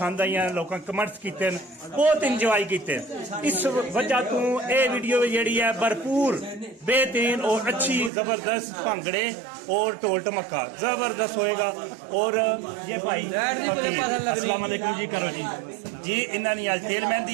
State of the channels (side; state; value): left; drops out; at 8.1 s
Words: आई लोगों कमेंट्स किए बहुत इंजॉय किए। इस वजह तो ये वीडियो जी है भरपूर बेहतरीन और अच्छी जबरदस्त भंगड़े और ढोल ढमक्का जबरदस्त होएगा। और ये भाई फकीर अस्सलाम वालेकुम जी करो जी इन्होंने आज तेल